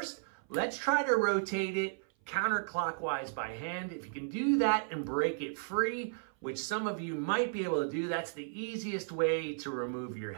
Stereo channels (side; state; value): left; silent; 55 dB below the other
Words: let's try to rotate it counterclockwise by hand. If you can do that and break it free, which some of you might be able to do, that's the easiest way to remove your